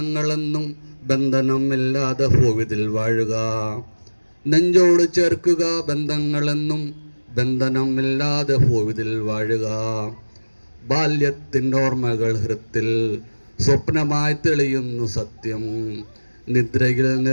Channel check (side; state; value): both; inverted; correlation -1.00